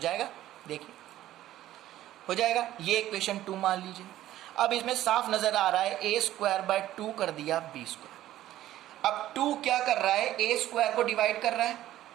देखिए हो जाएगा। ये इक्वेशन 2 मान लीजिए। अब इसमें साफ नजर आ रहा है A स्क्वायर बाय 2 कर दिया B स्क्वायर। अब 2 क्या कर रहा है, A स्क्वायर को डिवाइड कर रहा है।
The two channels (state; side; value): quieter; left; 13.7 dB